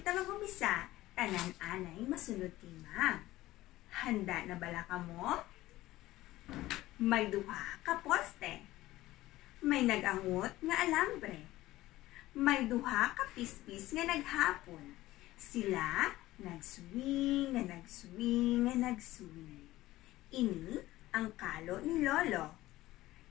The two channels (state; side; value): quieter; right; 16.6 dB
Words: mag-umisa, tanan-anay masunod kay Ma'am. Handa na bala ka mo? May duha ka poste. May nagangot nga alambre. May duha ka pispis nga naghapon. Sila nagswing, nga nagswing, nga nagswing. Ini ang kalo ni Lolo.